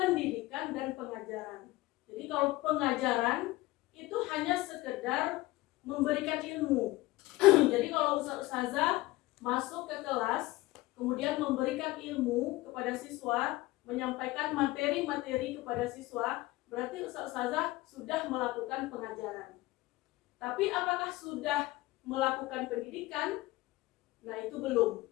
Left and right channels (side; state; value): right; quieter; 19.4 dB